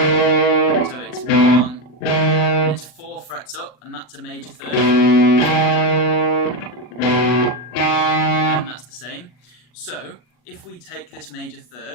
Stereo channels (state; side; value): late; right; 40 ms